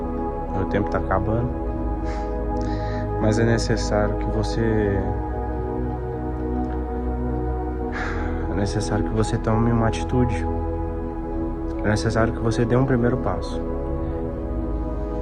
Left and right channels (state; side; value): identical; both; correlation 1.00